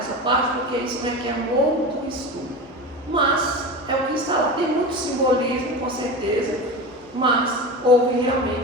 parte, porque isso requer um outro estudo. Mas é o que está lá. Tem muito simbolismo, com certeza, mas houve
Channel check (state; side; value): normal; both; correlation 0.27